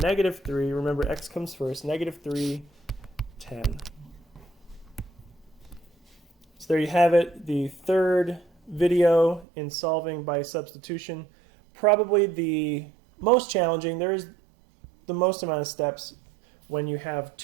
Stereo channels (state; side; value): drops out; left; at 9.5 s